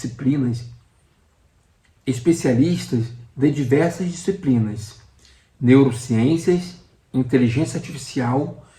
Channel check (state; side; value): identical; both; correlation 1.00